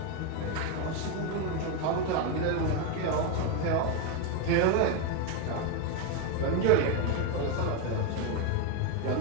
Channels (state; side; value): different; both; correlation 0.02